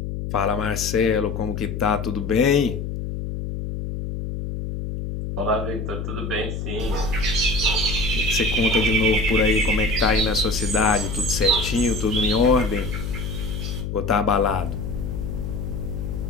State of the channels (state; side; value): noise; left; hum, 5 dB below the sound